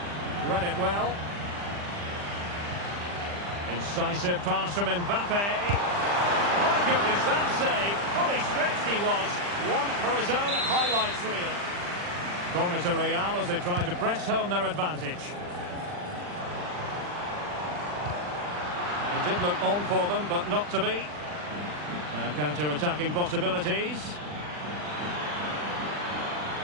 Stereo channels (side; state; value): left; late; 40 ms